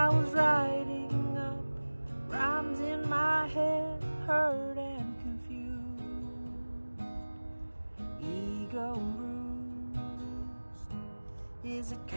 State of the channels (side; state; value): both; inverted; correlation -1.00